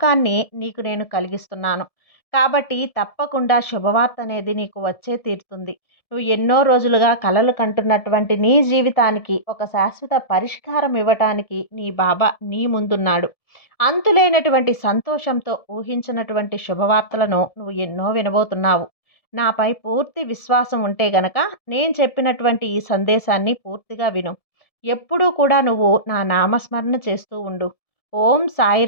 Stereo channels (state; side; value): late; right; 1.7 ms